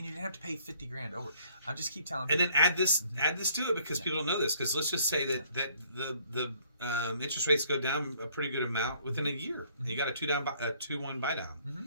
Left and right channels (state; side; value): inverted; both; correlation -0.62